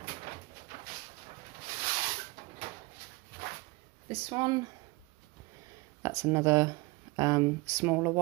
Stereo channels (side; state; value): left; quieter; 24.3 dB